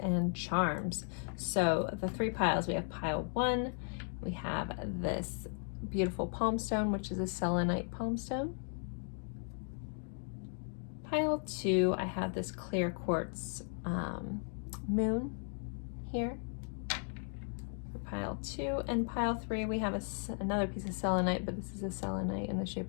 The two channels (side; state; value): right; silent; 54 dB below the other